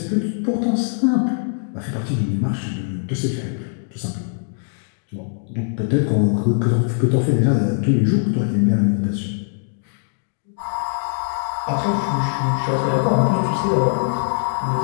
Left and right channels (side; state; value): right; silent; digital silence